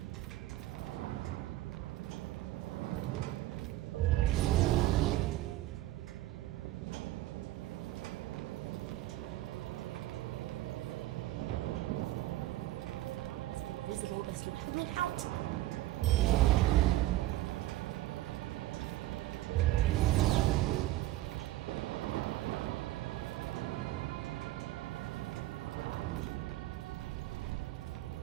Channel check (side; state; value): left; quieter; 15.8 dB